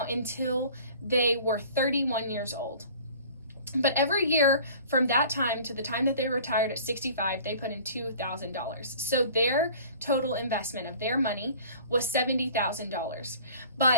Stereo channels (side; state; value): both; inverted; correlation -0.46